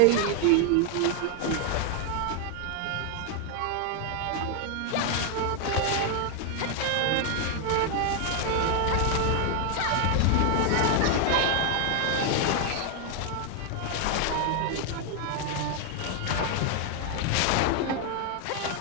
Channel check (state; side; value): different; both; correlation 0.00